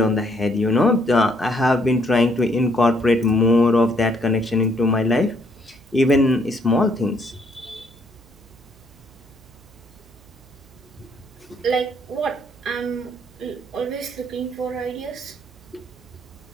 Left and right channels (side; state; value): right; noise; hum, 26 dB below the sound